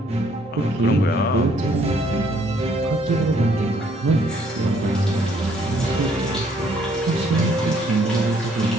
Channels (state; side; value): normal; both; correlation 0.65